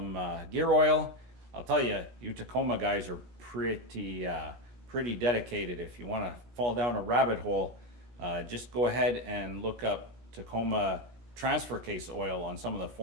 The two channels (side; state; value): left; late; 17 ms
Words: gear oil. I'll tell you, you Tacoma guys are pretty dedicated. If you want to fall down a rabbit hole, just go ahead and look up Tacoma transfer case oil on some of the